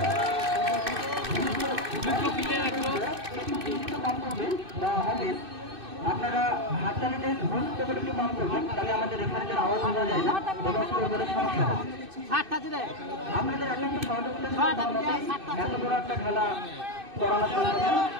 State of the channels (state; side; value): late; left; 2.6 ms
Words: আপনারা হাততালিতে গুরুত্ব করে একটু কম করবেন, তাহলে আমাদের রেফারিদের আওয়াজ শোনা যায় না এবং স্কোরবোর্ডের সমস্যা হয়। আপনাদের একটা সহযোগিতা এত বড় একটা খেলা করানো সম্ভব না।